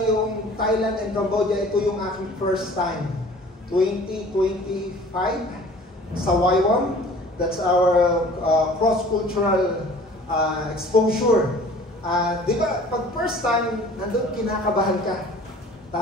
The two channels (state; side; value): normal; both; correlation 0.48